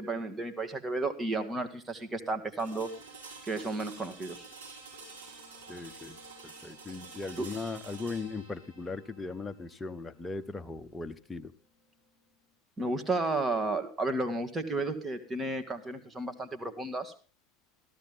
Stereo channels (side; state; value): both; normal; correlation 0.66